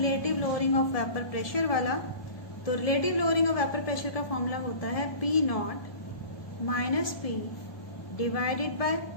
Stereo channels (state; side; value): late; right; 1.7 ms